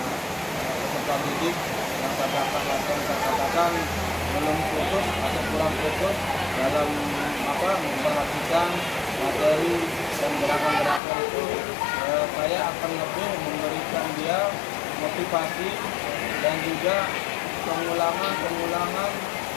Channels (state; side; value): drops out; right; at 11.0 s